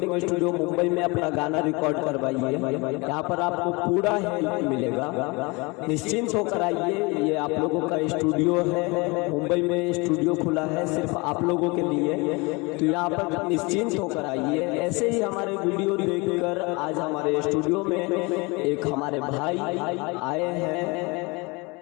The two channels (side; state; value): right; quieter; 26.7 dB